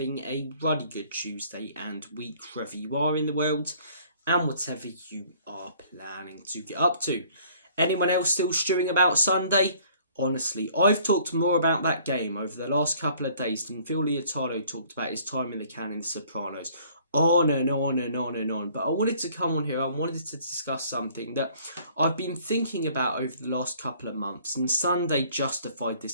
a really good Tuesday and week wherever you are in the world and whatever you are planning to get up to. Anyone else still stewing about Sunday? Honestly, I've talked more about that game over the last couple of days than Phil Leotardo talked about his time in the can in The Sopranos. On and on and on and on. But I wanted to come on here, I wanted to discuss something that I've been thinking about over the last couple of months, and Sunday justified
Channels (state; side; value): inverted; both; correlation -0.56